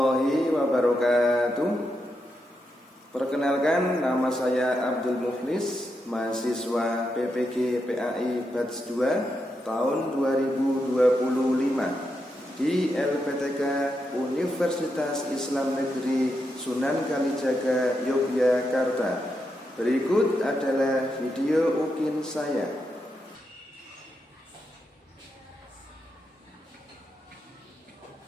wabarakatuh. Perkenalkan, nama saya Abdul Muflis, mahasiswa PPG PAI Batch 2 tahun 2025 di LPTK Universitas Islam Negeri Sunan Kalijaga, Yogyakarta. Berikut adalah video ukin saya.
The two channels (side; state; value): both; normal; correlation 0.84